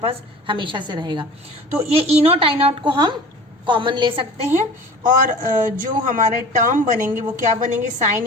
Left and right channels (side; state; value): both; normal; correlation 0.40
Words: हमेशा से रहेगा। तो ये ई नॉट आई नॉट को हम कॉमन ले सकते हैं, और जो हमारे टर्म बनेंगे वो क्या बनेंगे,